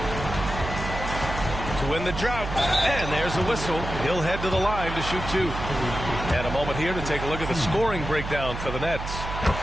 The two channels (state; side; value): noise; right; hum, 7 dB below the sound